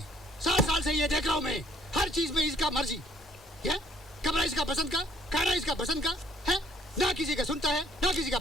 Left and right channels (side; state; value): both; normal; correlation 0.62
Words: 7 साल से ये देख रहा हूँ मैं, हर चीज में इसका मर्जी है। कमरा इसका पसंद का, खाना इसका पसंद का है, ना किसी का सुनता है ना किसी का